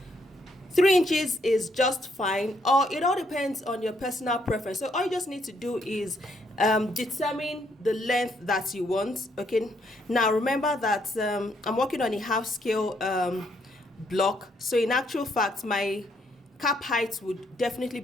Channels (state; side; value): normal; both; correlation 0.72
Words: 3 inches is just fine, or it all depends on your personal preference. So all you just need to do is determine the length that you want. Okay, now remember that I'm working on a half scale block, so in actual fact my cap height would definitely